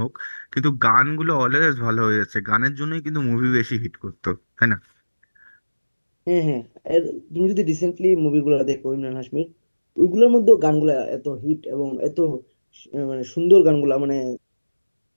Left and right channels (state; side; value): inverted; both; correlation -1.00